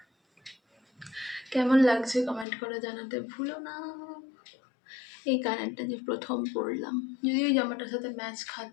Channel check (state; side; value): drops out; right; at 2.5 s